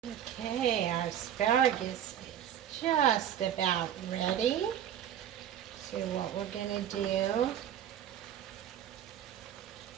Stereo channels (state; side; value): quieter; left; 10.2 dB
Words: Okay, our asparagus is just about ready. So what we're going to do